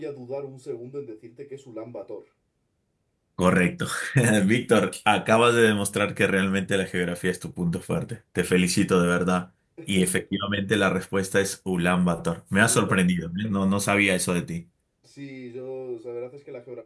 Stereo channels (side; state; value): both; identical; correlation 1.00